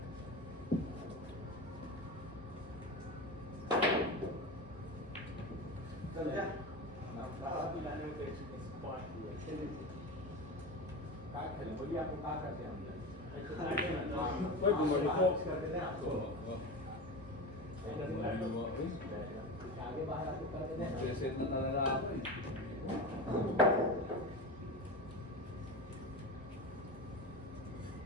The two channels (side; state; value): both; normal; correlation 0.25